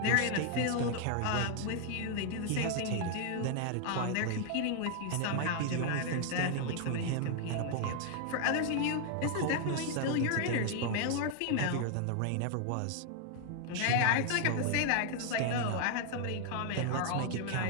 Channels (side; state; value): both; different; correlation 0.00